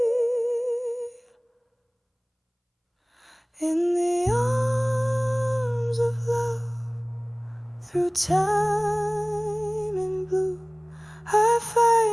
In the arms of love, through time and blue, I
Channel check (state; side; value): identical; both; correlation 1.00